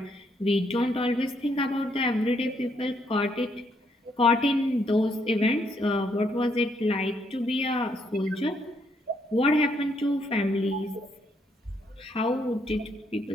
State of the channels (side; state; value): both; normal; correlation 0.73